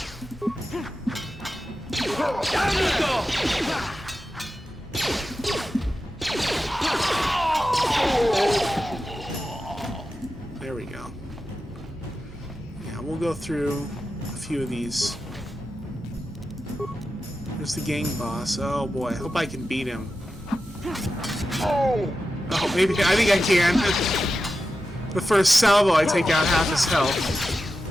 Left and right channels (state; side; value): normal; both; correlation 0.91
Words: There we go. Yeah, we'll go through a few of these. There's the gang boss. Oh boy, I hope I can beat him. Oh, maybe, I think I can. The first salvo, I take out half his health.